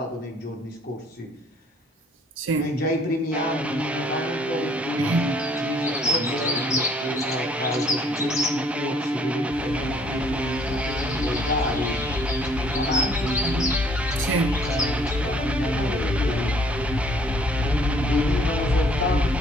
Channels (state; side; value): normal; both; correlation 0.60